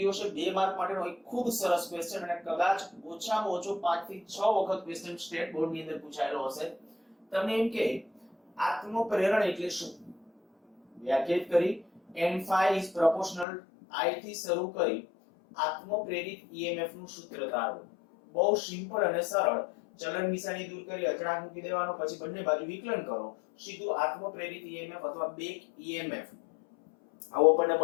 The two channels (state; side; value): drops out; right; at 13.5 s